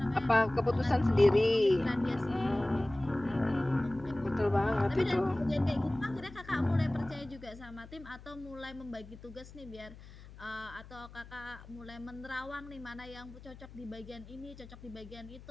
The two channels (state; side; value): noise; left; hum, 18 dB below the sound